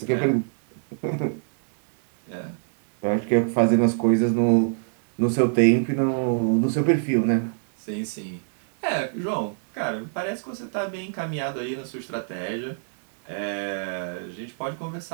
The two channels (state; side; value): silent; left; digital silence